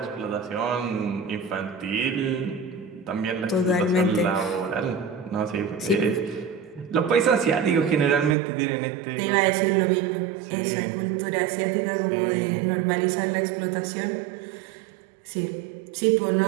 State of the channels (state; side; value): drops out; left; at 8.3 s